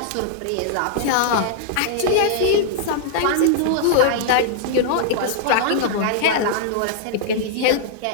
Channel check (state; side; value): different; both; correlation -0.01